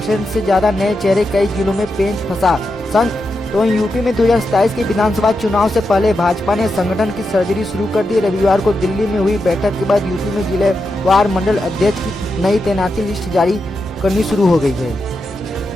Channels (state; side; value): normal; both; correlation 0.87